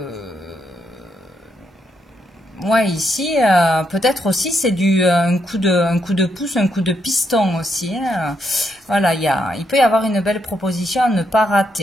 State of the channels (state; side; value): normal; both; correlation 0.78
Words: Ouais, ici, peut-être aussi c'est un coup de pouce, un coup de piston aussi. Voilà, il peut y avoir une belle proposition à ne pas